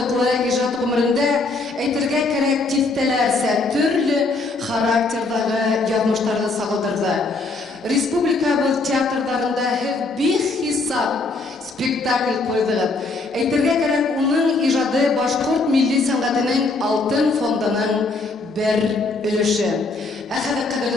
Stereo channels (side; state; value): right; quieter; 3.5 dB